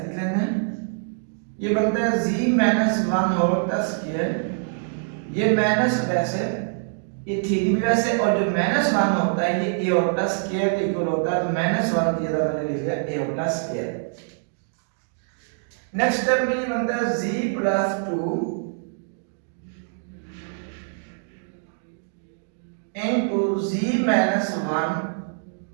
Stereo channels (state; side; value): silent; left; digital silence